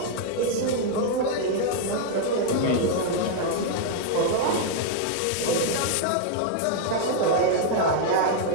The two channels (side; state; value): both; different; correlation 0.00